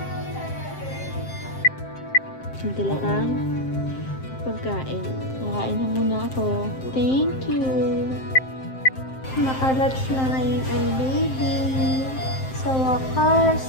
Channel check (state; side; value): late; right; 7.6 ms